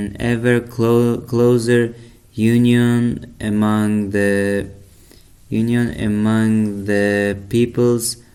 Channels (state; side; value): identical; both; correlation 1.00